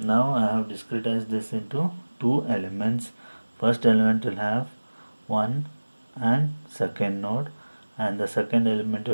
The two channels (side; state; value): both; inverted; correlation -1.00